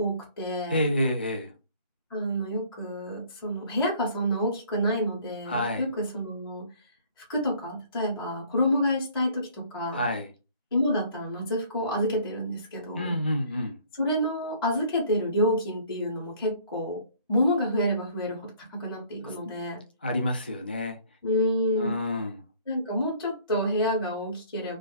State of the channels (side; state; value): both; inverted; correlation -0.55